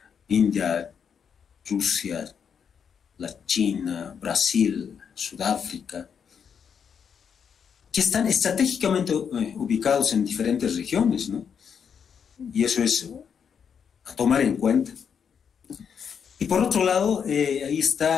India, Rusia, la China, Brasil, Sudáfrica, que están estratégicamente ubicados en diferentes regiones, ¿no? Y eso es a tomar en cuenta. Y por otro lado, ahí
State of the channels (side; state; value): right; quieter; 7.2 dB